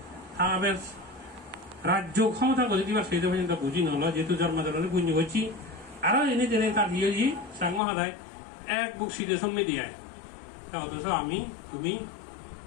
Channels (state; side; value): drops out; right; at 7.8 s